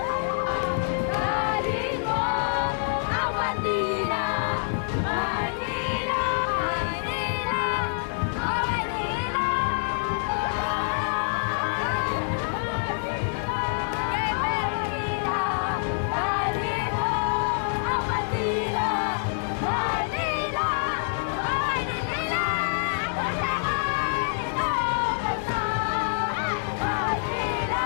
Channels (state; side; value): silent; right; digital silence